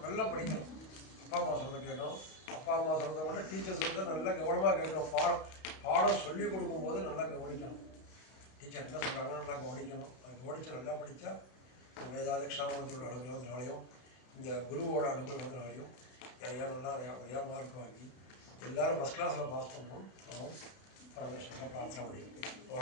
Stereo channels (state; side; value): late; right; 32 ms